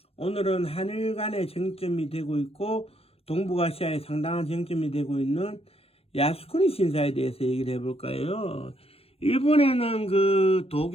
오늘은 한일 간의 쟁점이 되고 있고, 동북아시아에 상당한 쟁점이 되고 있는 야스쿠니 신사에 대해서 얘기를 해볼까요? 일본에는 그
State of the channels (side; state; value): right; late; 0.28 ms